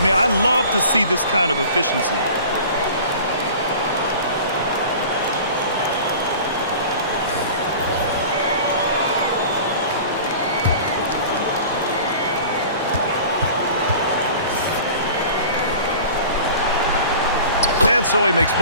mean, I love to see this kind of efficiency. And so he makes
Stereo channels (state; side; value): inverted; both; correlation -0.41